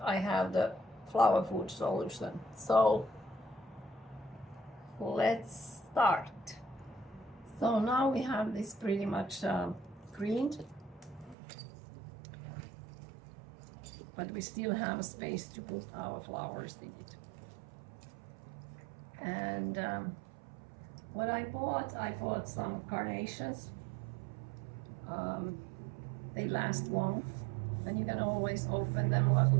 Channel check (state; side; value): drops out; left; at 11.4 s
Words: I have the flower food solution. So let's start. So now we have this pretty much greened, but we still have space to put our flowers in it. And what I bought some carnations. They last long, and you can always open them a